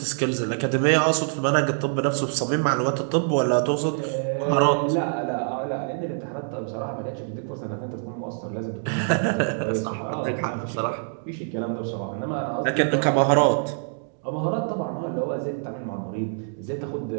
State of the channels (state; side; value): silent; left; digital silence